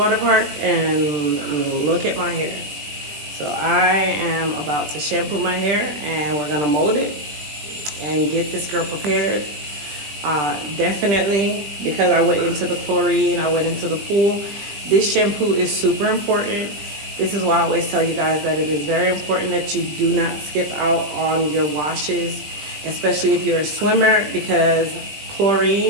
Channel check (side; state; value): left; late; 20 ms